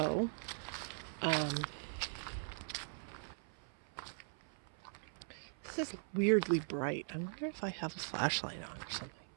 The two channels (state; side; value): silent; left; 51 dB below the other